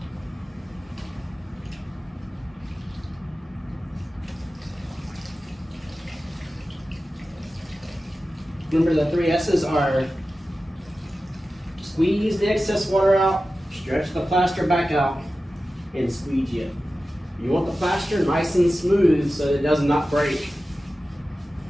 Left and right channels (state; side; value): normal; both; correlation 0.94